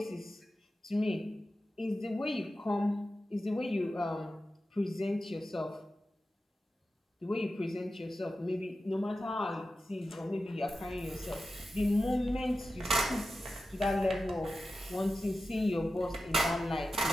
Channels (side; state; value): both; normal; correlation 0.92